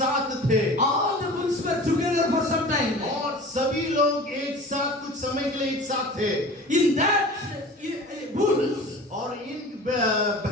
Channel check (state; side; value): normal; both; correlation 0.39